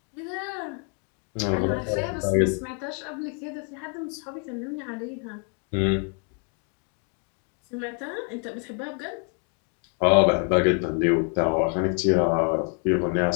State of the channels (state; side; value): quieter; right; 38.4 dB